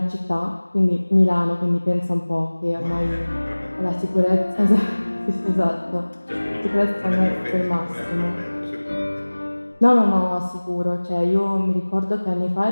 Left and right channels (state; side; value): inverted; both; correlation -1.00